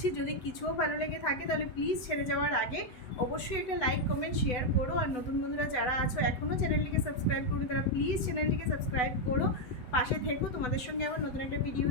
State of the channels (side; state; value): right; late; 8.0 ms